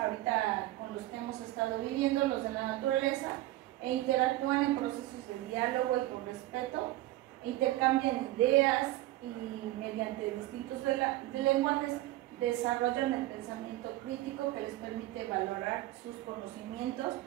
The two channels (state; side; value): quieter; left; 16.6 dB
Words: con los que hemos estado viviendo, los de la naturaleza, e interactúan en procesos de diálogo y con respeto, intercambian ideas y mediante distintos lenguajes desarrollan el pensamiento crítico que les permite valorar sus conocimientos